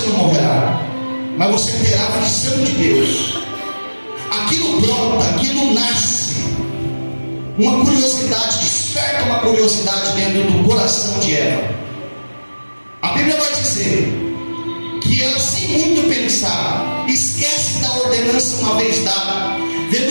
não morrerá, mas você terá a visão de Deus. Aquilo brota, aquilo nasce, uma curiosidade, desperta uma curiosidade dentro do coração de Eva. A Bíblia vai dizer que ela, sem muito pensar, esquece da ordenança uma vez dada.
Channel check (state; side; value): inverted; both; correlation -1.00